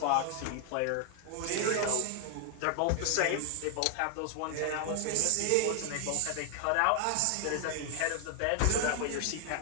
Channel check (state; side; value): different; both; correlation 0.00